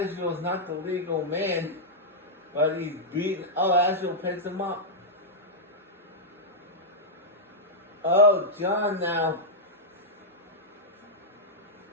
not the legal man, but he's beaten. Oh, Asheville picks him up. Oh, John now.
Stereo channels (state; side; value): normal; both; correlation -0.07